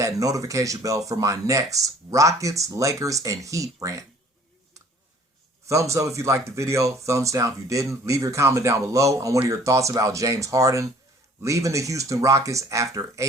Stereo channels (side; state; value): both; normal; correlation 0.54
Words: notification bell for my next Rockets, Lakers, and Heat rant. Thumbs up if you liked the video. Thumbs down if you didn't. Leave your comment down below on what are your thoughts about James Harden leaving the Houston Rockets after